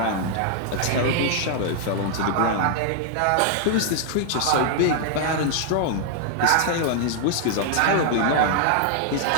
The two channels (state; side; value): different; both; correlation 0.00